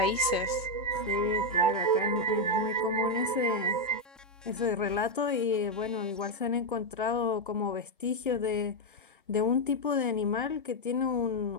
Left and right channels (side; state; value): both; normal; correlation 0.04